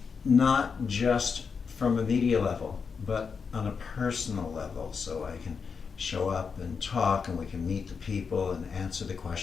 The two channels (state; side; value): quieter; right; 5.7 dB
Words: not just from a media level, but on a personal level, so I can show up and talk and we can meet the people and answer the